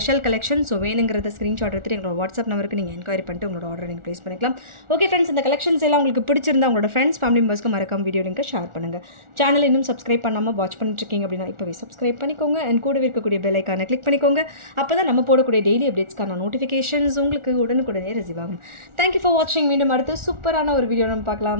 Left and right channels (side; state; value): left; late; 1.4 ms